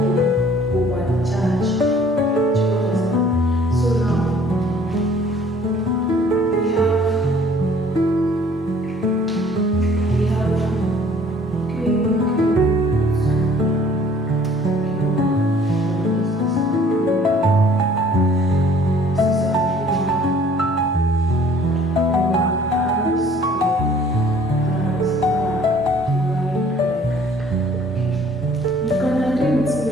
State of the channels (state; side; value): normal; both; correlation 0.55